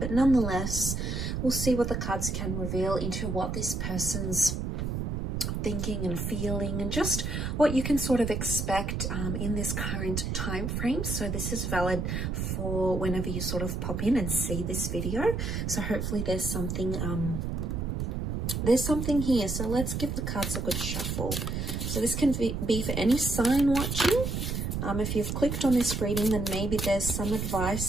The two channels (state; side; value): noise; right; rumble, 2 dB below the sound